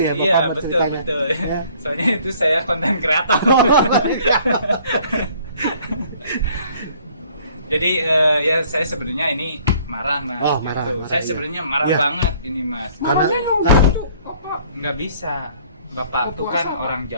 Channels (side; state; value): both; inverted; correlation -0.57